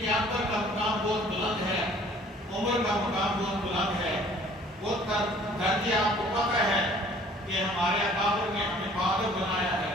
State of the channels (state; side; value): normal; both; correlation 0.54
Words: اکبر کا مقام بہت بلند ہے، عمر کا مقام بہت بلند ہے۔ وہ درجے آپ کو پتہ ہے کہ ہمارے اکابر نے ہمیں بہادر بنایا ہے،